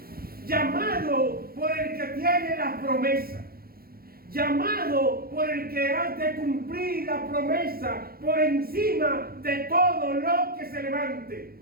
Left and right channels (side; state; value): left; late; 0.44 ms